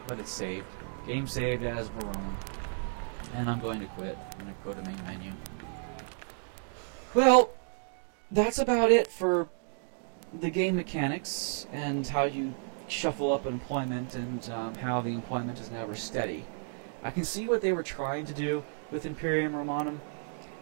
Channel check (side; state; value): left; silent; 56 dB below the other